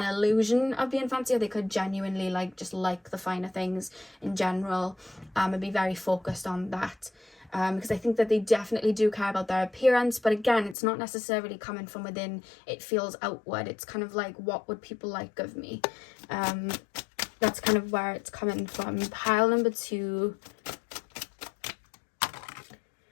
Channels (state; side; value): drops out; right; at 10.8 s